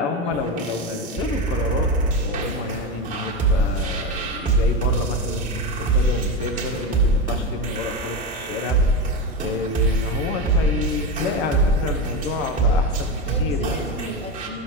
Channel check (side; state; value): both; normal; correlation 0.16